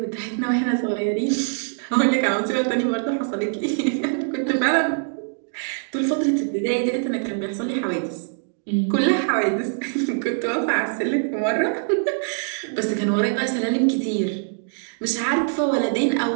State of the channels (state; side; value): silent; left; digital silence